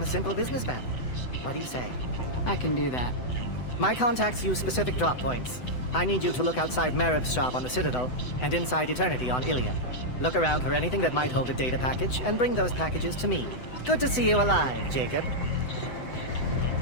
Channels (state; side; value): late; right; 7.9 ms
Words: a simple businessman. What do you say? I can do that. My contacts use specific drop points. I need you to look outside Merib's shop on the Citadel and inside Eternity on Ilium. Look around for anything that might hold a data package and bring those packages to me. Good to see you alive, Jacob.